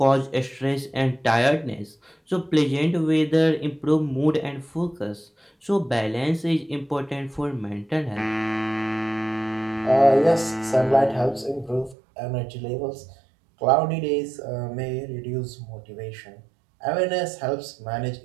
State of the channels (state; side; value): drops out; left; at 12.0 s